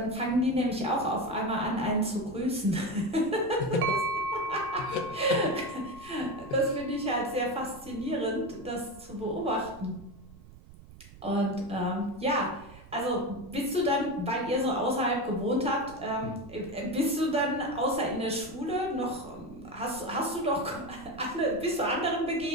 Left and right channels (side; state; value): right; noise; rumble, 19 dB below the sound